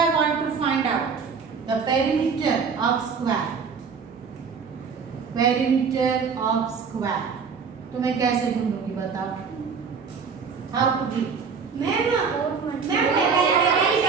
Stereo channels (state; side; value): quieter; left; 5.8 dB